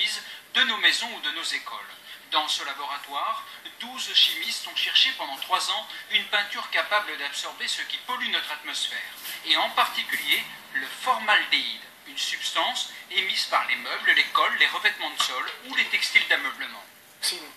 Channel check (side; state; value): both; identical; correlation 1.00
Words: de nos maisons ou de nos écoles. Dans ce laboratoire, 12 chimistes ont cherché pendant 3 ans une peinture capable d'absorber ce qui pollue notre atmosphère, et en particulier le formaldéhyde, une substance émise par les meubles, les cols, les revêtements de sol ou les textiles d'ameublement. C'est une